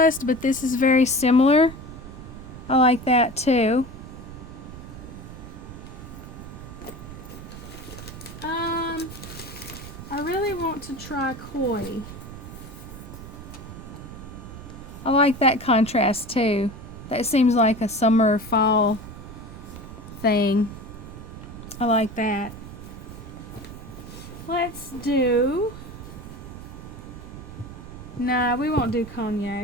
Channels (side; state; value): right; noise; rumble, 13 dB below the sound